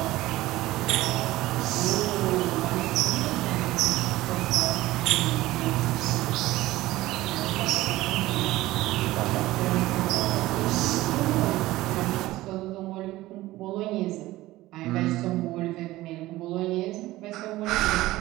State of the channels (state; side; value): quieter; left; 17.3 dB